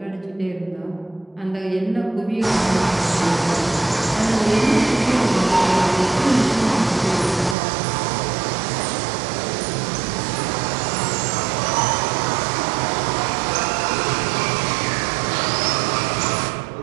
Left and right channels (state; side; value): drops out; left; at 7.6 s